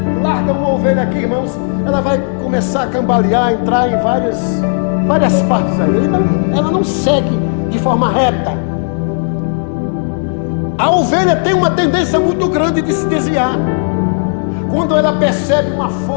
larga uma ovelha aqui, irmãos, ela vai começar a cambalear, entrar em várias partes aí. Ela não segue de forma reta. A ovelha tem uma tendência muito grande de se desviar. Quando ela percebe uma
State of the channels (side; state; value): right; silent; digital silence